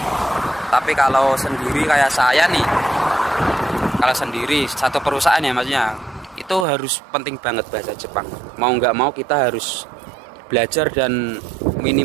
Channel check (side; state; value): left; drops out; at 6.7 s